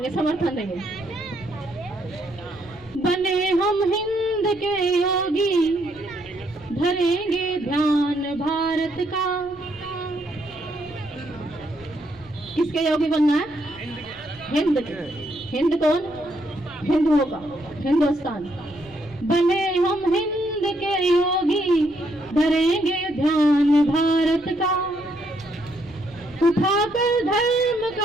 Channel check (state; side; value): noise; left; rumble, 24 dB below the sound